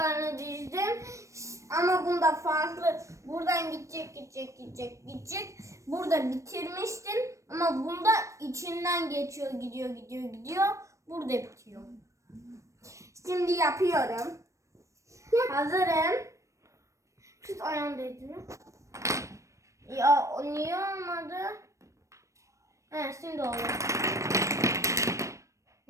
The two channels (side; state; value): left; late; 0.15 ms